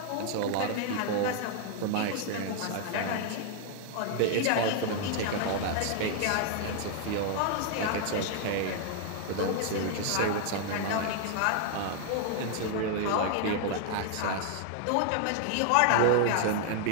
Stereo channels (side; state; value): both; different; correlation 0.00